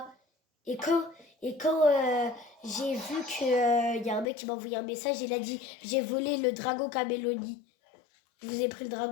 Et quand j'ai vu qu'il y a un mec qui m'a envoyé un message, il a dit « J'ai volé le dragon camélodie ». Je vous ai pris le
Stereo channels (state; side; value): drops out; right; at 4.2 s